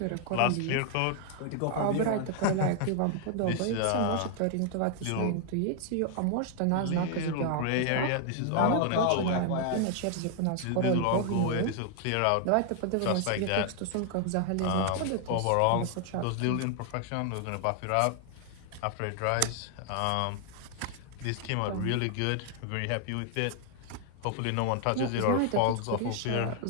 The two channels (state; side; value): different; both; correlation 0.00